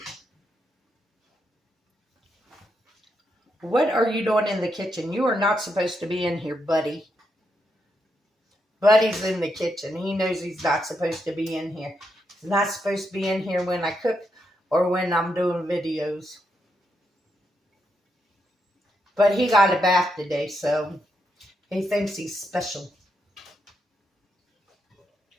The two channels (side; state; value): both; normal; correlation 0.81